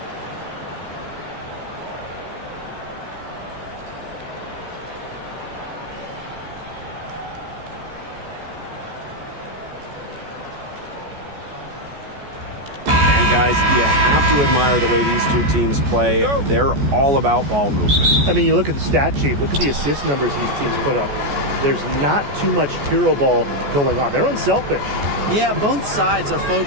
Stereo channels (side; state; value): left; late; 14 ms